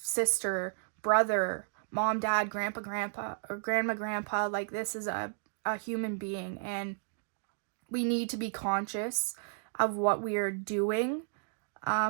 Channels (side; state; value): left; silent; digital silence